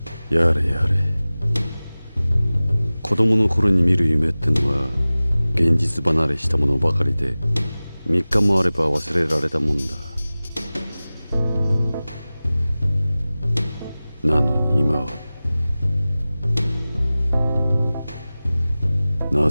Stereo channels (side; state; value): both; inverted; correlation -0.98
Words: やれやれ。子供の頃に見る夢ってのは現実離れしたものばかりで、3日もあれば忘れられたもんだ。なのに今は、な